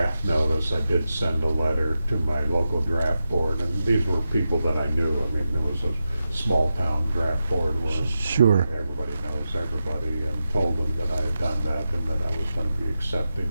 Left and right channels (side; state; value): both; inverted; correlation -0.90